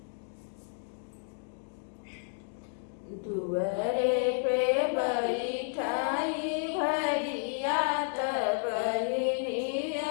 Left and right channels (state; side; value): silent; right; digital silence